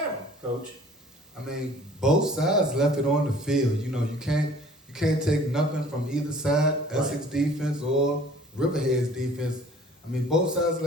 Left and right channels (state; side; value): normal; both; correlation 0.51